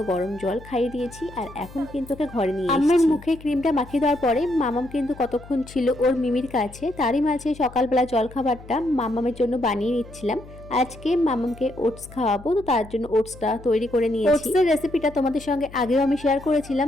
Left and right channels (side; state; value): left; noise; hum, 18 dB below the sound